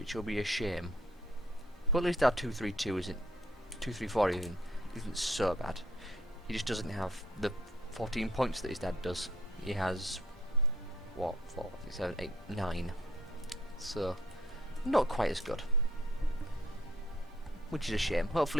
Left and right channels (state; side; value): normal; both; correlation 0.63